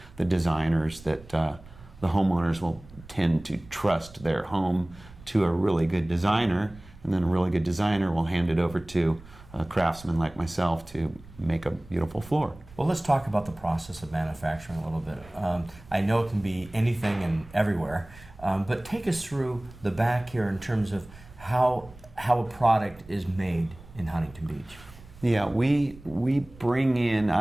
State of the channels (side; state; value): right; noise; rumble, 21 dB below the sound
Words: the designers that the homeowners will tend to trust their home to a really good designer, and then a really good designer will hand it over to a craftsman like myself to make a beautiful floor. Well, let's talk about the process of manufacturing a little bit. I know it can be anything and everywhere, but take us through the back here in terms of how a product is made in Huntington Beach. Yeah, we bring in,